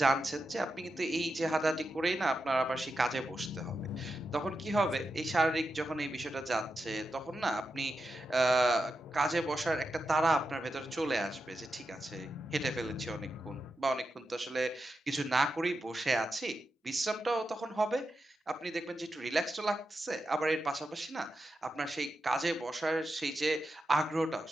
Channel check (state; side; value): normal; both; correlation 0.88